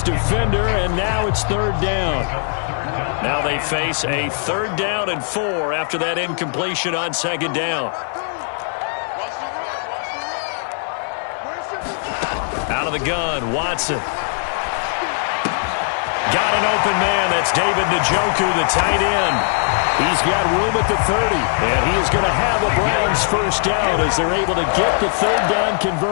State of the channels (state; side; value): silent; right; digital silence